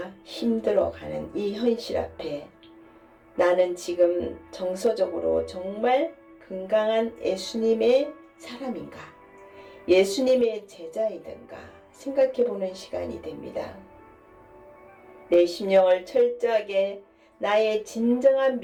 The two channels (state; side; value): identical; both; correlation 1.00